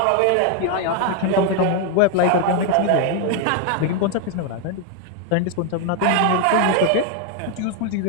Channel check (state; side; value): different; both; correlation 0.01